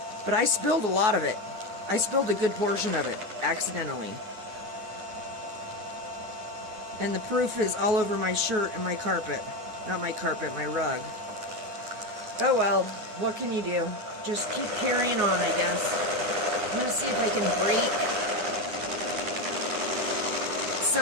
But I spilled a lot of it. I spilled a good portion of it, accidentally. And the proof is all over my shirt and my carpet. Not my carpet, my rug. Oh well, what can you do? Just keep carrying on, I guess. I'm going to see if I can break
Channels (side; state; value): left; late; 10 ms